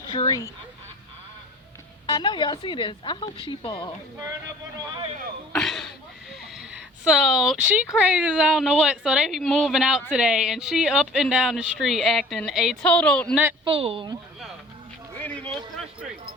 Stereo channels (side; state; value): both; normal; correlation 0.48